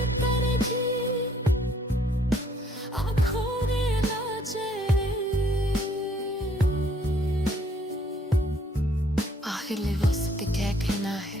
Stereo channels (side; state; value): both; normal; correlation 0.64